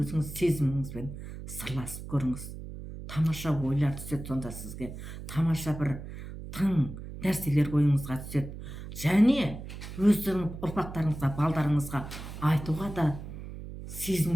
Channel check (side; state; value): right; noise; hum, 11 dB below the sound